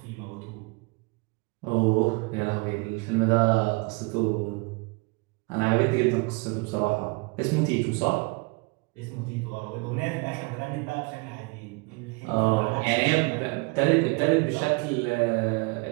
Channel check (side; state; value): left; quieter; 28.9 dB